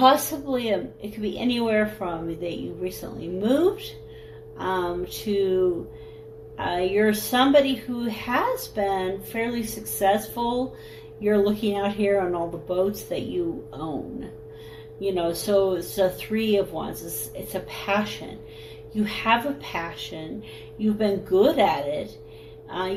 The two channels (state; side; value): identical; both; correlation 1.00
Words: it could be anywhere from that you recently moved to you're somebody who has been fairly successful. You're looking out here on all the boats that you own. So it's a 3 of Wands. It's a passion. You have a passion. You've been good at it.